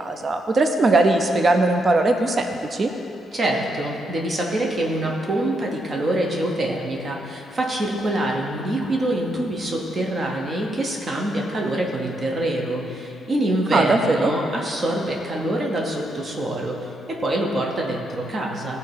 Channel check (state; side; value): normal; both; correlation 0.79